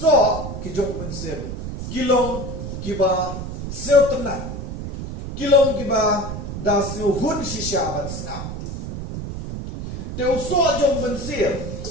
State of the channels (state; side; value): noise; right; rumble, 7 dB below the sound